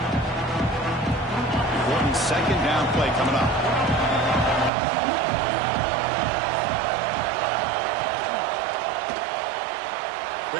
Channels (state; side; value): drops out; left; at 4.7 s